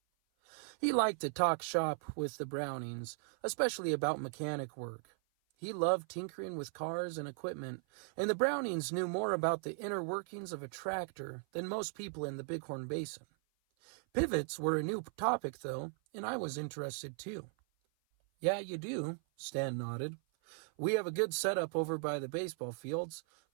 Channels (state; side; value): silent; left; 53 dB below the other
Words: He liked to talk shop with the Brownings, especially about mechanic work. He loved tinkering with cars and equipment, and the Brownings knew more about the inner workings of a tractor than most people in the Bighorn Basin. Pivots were a new topic, though, and I was interested too. "Yeah, you do," Stan nodded. "We have a good setup over by the baseball fields,